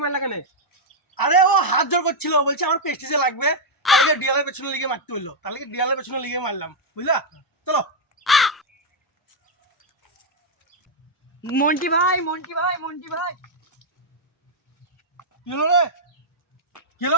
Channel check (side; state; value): both; normal; correlation -0.03